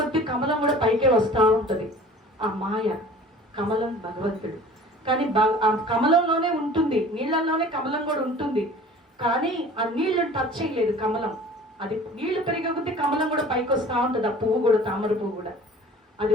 కమలం కూడా పైకే వస్తూ ఉంటుంది. ఆ మాయ, కమలం భగవంతుడు. కానీ ఆ కమలంలోనే ఉంటుంది, నీళ్ళల్లోనే కమలం కూడా ఉంటుంది. కానీ ఆ నీళ్లు టచ్ చేయలేదు కమలం. అది నీళ్లు పెరిగే కొద్దీ కమలం కూడా పైకి వస్తూ ఉంటుంది. ఆ పువ్వు కూడా, తామర పువ్వు కూడా. అది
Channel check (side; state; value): both; normal; correlation 0.45